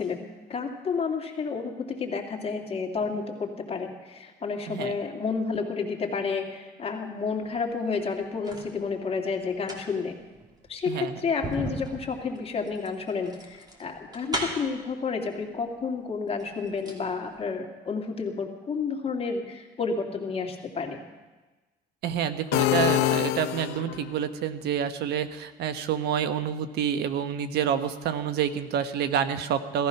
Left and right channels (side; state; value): both; normal; correlation 0.29